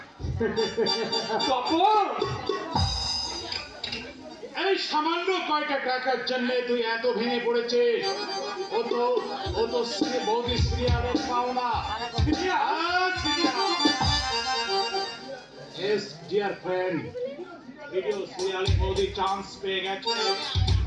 তখন এই সামান্য কয়টা টাকার জন্য তুই এত ভেঙে পড়েছিস? ও তো বৌদি সিরিয়ালের পাওনা। Yes, dear friend, ভিডিও সিরিয়ালে বৌদি চান্স পেয়ে গেছে।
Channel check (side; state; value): both; identical; correlation 1.00